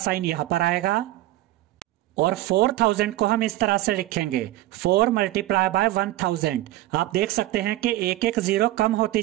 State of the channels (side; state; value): left; quieter; 16.0 dB